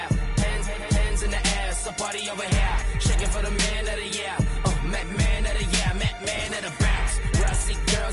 Hands in the air. It's a party over here. Shaking for the man of the year. Man of the year. Man of the bounce. Brassy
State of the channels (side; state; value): both; identical; correlation 1.00